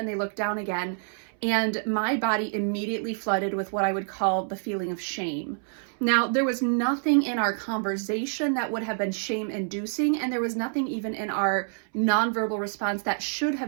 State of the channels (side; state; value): left; silent; 60 dB below the other